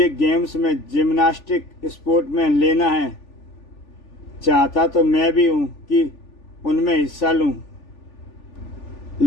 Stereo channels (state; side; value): late; right; 3.4 ms